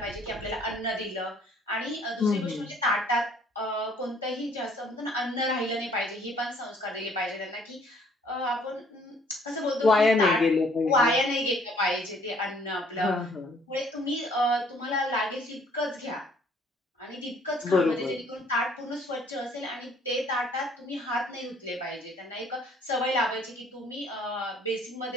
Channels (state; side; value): normal; both; correlation 0.60